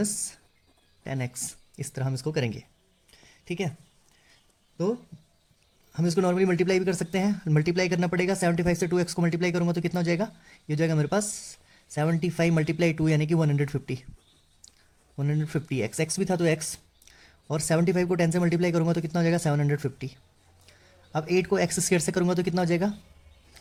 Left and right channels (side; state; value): both; identical; correlation 1.00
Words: 10x, इस तरह हम इसको करेंगे। ठीक है, तो हम इसको नॉर्मली मल्टीप्लाई भी कर सकते हैं, मल्टीप्लाई करना पड़ेगा। 75 से 2x को मल्टीप्लाई करूँगा तो कितना हो जाएगा, ये हो जाएगा मेरे पास 75 मल्टीप्लाई 2 यानी कि 150 x भी था तो x, और 75 को 10 से मल्टीप्लाई करूँगा तो कितना हो जाएगा 750। अब 8 को x स्क्वायर से करूँगा तो कितना हो जाएगा